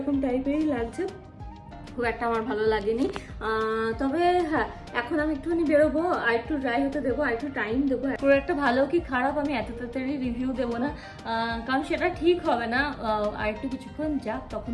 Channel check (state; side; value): identical; both; correlation 1.00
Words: টাইপেরই লাগছে। খুব একটা আমার ভালো লাগেনি। তবে হ্যাঁ, এখন আমি একটুখানি বেরোবো, আর একটু ড্রাই হতে দেবো, আর একটু টাইম দেবো। পুরো একটা ভালো কি খারাপ আমি এত তাড়াতাড়ি রিভিউ দেবো না, কারণ সেটা ঠিক হবে না। আর একটু কিছুক্ষণ যাক,